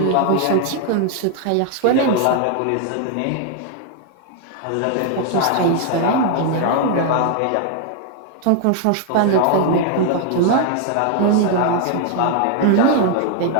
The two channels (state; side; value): different; both; correlation 0.00